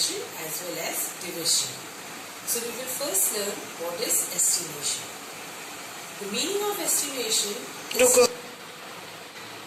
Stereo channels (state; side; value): identical; both; correlation 1.00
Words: as well as division. So we will first learn what is estimation. The meaning of estimation